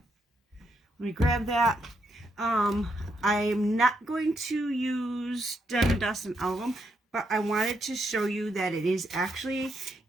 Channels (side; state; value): both; normal; correlation 0.78